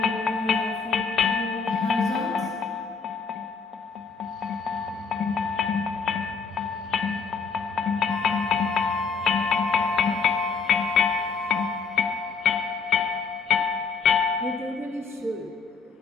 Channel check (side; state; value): right; quieter; 5.4 dB